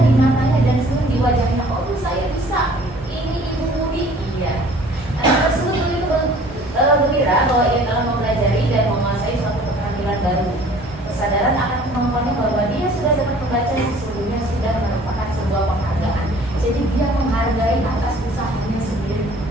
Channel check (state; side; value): normal; both; correlation 0.51